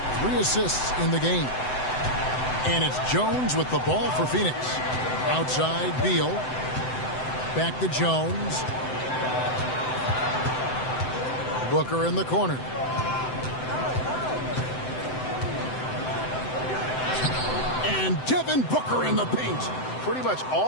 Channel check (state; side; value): late; right; 7.8 ms